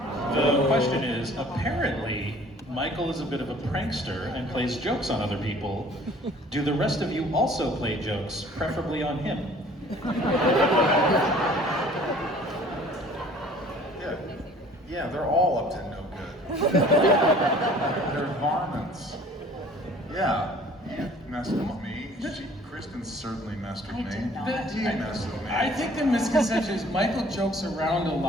The question is, apparently, Michael is a bit of a prankster and plays jokes on other people. Do the rest of you also play jokes, preferably on him? Yeah, they're all up to no good. They're varmints. Yeah, you messed with me. Kristin certainly messed with me. He messed with me. I think the misconception is Michael jokes around a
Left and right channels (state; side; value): normal; both; correlation 0.52